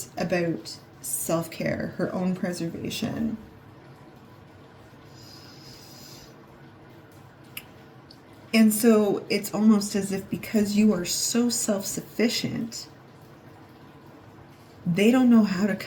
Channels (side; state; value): both; identical; correlation 1.00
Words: about self-care, her own preservation. And so it's almost as if because you are so self-sufficient, they don't know how to